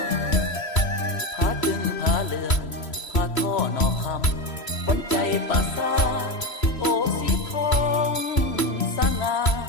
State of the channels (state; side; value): late; right; 3.0 ms